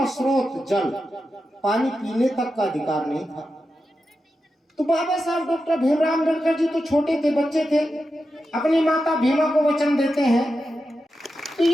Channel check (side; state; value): both; normal; correlation 0.89